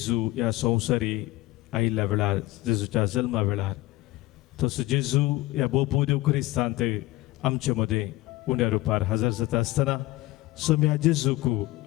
ह्या संवसारी आयिल्ल्या वेळार, जेजूच्या जल्मा वेळार. तसो जेजू ह्या भोव देव क्रिस्तांत आमचे मदें उण्या रुपार हजर जाता आसतना सोम्या जेजूक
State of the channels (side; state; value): right; quieter; 18.1 dB